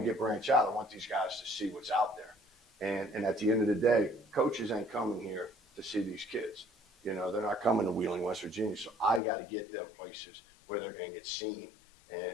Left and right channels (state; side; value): drops out; right; at 9.2 s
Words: to branch out. I want these guys to see what's out there. And at the end of the day, coaches ain't coming here to see these kids. They're not coming to Wheeling, West Virginia. So I got to get them places where they're going to get seen.